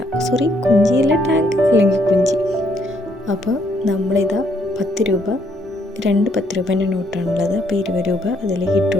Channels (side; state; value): both; normal; correlation 0.70